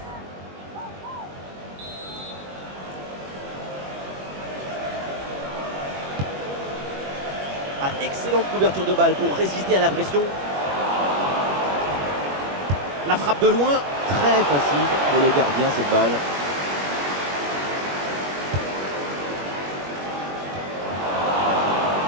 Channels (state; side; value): late; left; 21 ms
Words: Ah, excellente couverture de balle pour résister à la pression. La frappe de loin, très facile pour le gardien cette balle.